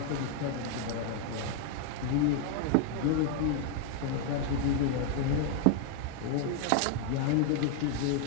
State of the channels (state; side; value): different; both; correlation 0.01